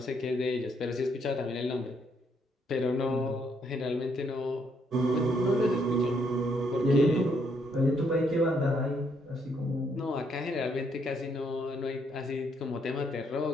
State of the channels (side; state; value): both; normal; correlation 0.72